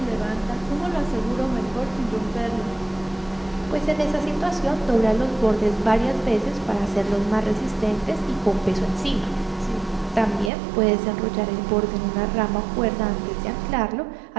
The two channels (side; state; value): left; drops out; at 10.5 s